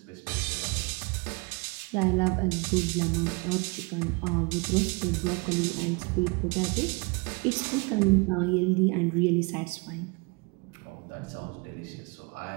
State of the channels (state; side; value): quieter; left; 29.9 dB